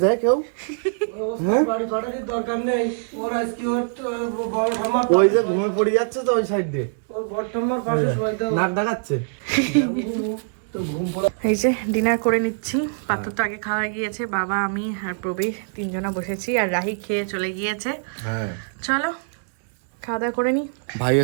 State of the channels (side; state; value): left; silent; digital silence